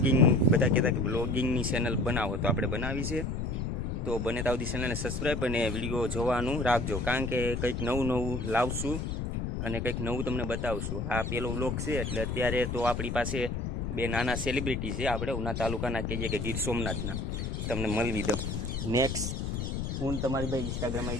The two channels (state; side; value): noise; left; rumble, 2 dB below the sound